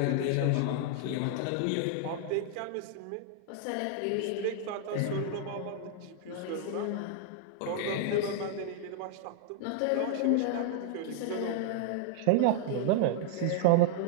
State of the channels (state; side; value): different; both; correlation -0.01